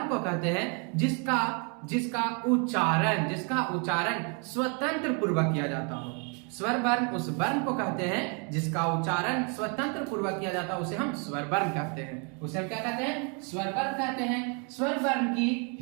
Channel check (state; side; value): quieter; left; 37.2 dB